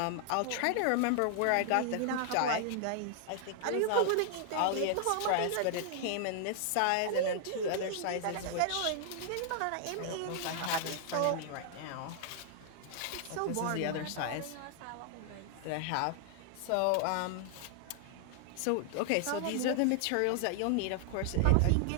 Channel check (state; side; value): different; both; correlation 0.00